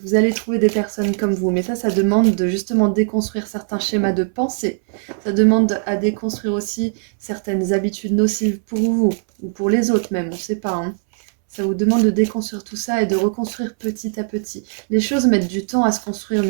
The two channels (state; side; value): silent; left; 63 dB below the other